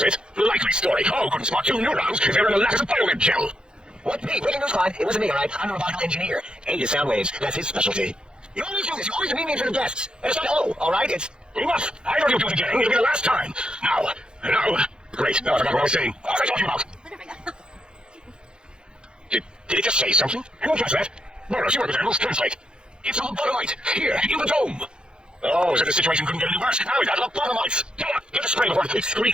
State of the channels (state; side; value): late; left; 0.049 ms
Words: it? Likely story. Oh, couldn't spot two neurons if they were in a lattice of biomed gel. What? Me? Breaking news line. It wasn't me, all right? I'm a robotical engineer. A is sound waves. That's his specialty. You always do this. You always demean me for the guests. And it's not O, all right? It's... Enough! I know you'll do it again. It'll be the last time. Now. Great. Now I forgot what I was saying. What was I talking about? Did it just say something? I won't touch that. Boros, you work with animals. Translate. It's a lobotomite. Here, in the dome. Oh, so the situation couldn't get any worse. Now we got lobotomites. Get the spray before it